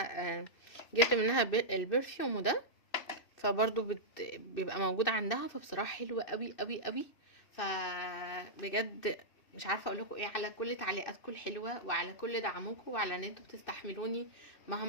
جبت منها البرفيوم ده، فبرضو بيبقى موجود عندها، فبصراحة حلوة قوي قوي قوي. فبجد مش عارفة اقول لكم ايه على كل تعليقاتكم الحلوة، وعلى كل دعمكم، وعلى ان انتوا بتستحملوني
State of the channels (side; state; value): right; late; 2.6 ms